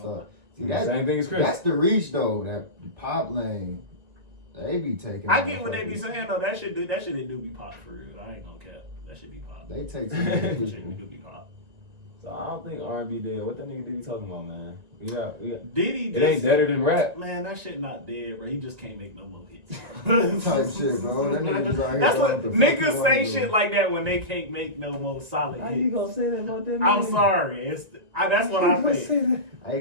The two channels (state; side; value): late; left; 1.9 ms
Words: See, Same thing as Chris. That's the reach though. That pop lane, they be taking. I get what they be motherfuckers. saying though. That shit do be pop for real. I ain't gonna cap. That should be pop. They take some That shit people. do be pop. So I don't think R&B dead. What that nigga Diddy talking about, man? We got. Diddy It ain't deader than rap. Man, that shit not dead, bro. He just can't make no more hits. Type shit, bro. That nigga just out here That's doing what the fuck niggas he say wanna shit do. like that when they can't make no more solid How you hits. gonna say that about that? I'm man? sorry. That's what I think. Hey,